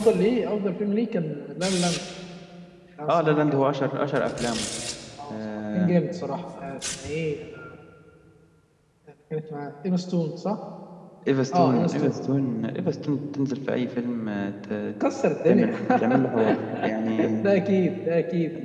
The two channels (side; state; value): both; identical; correlation 1.00